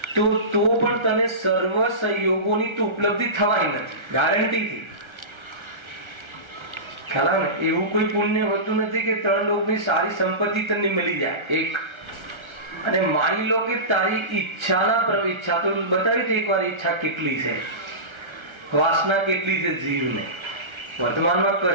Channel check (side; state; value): left; late; 1.3 ms